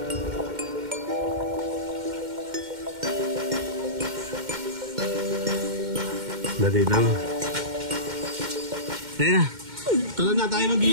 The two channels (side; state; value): left; late; 2.1 ms